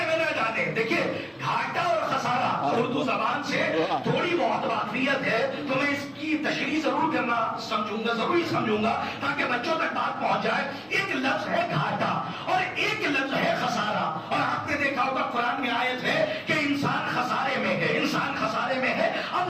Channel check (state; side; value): identical; both; correlation 1.00